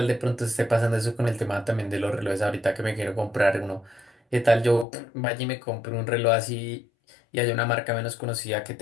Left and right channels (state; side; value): drops out; right; at 4.9 s